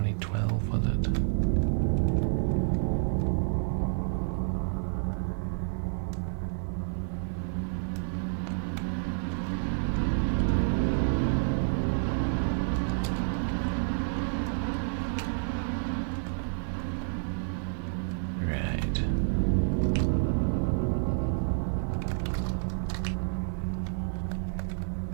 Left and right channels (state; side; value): silent; left; 58 dB below the other